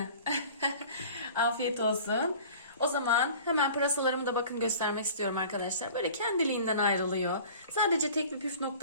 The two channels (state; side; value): inverted; both; correlation -0.43